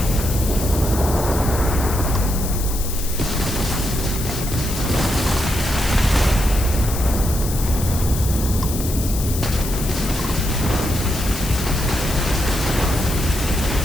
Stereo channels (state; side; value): noise; left; hiss, 8 dB below the sound